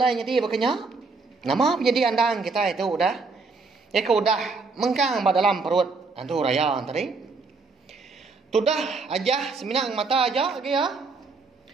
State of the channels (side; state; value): left; quieter; 4.2 dB